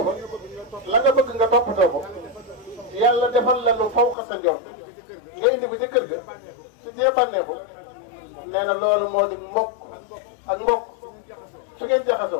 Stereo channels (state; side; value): drops out; right; at 4.2 s